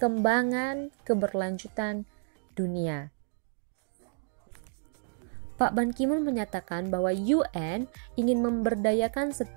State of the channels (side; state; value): left; silent; digital silence